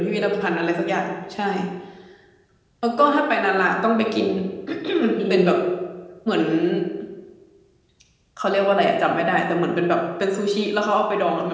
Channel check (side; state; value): both; identical; correlation 1.00